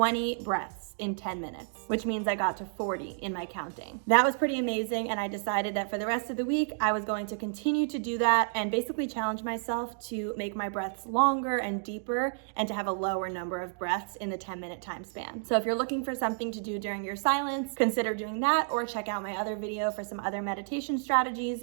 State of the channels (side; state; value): left; silent; digital silence